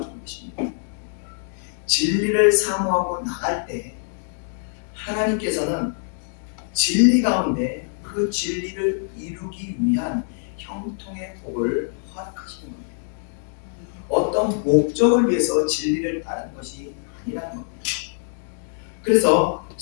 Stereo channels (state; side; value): silent; right; 63 dB below the other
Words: 것입니다. 진리를 사모하고 나갈 때 하나님께서는 진리 가운데 그 진리를 이루기 위한 형통의 복을 허락하시는 겁니다. 어떤 목적을 위해서 진리를 따르는 것이 아니라는 겁니다. 그래서